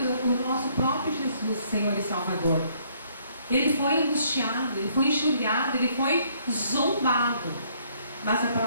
nosso próprio Jesus, Senhor e Salvador. Ele foi angustiado, ele foi enxurrado, ele foi zombado. Mas a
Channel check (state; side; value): inverted; both; correlation -0.65